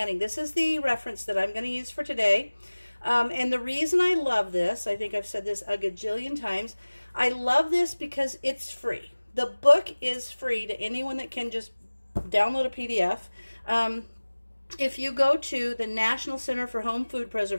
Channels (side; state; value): both; inverted; correlation -1.00